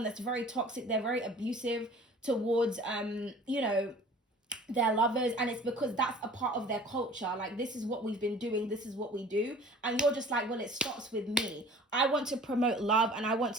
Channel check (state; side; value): normal; both; correlation 0.47